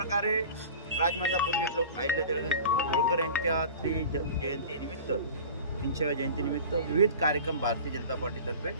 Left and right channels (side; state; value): both; inverted; correlation -0.38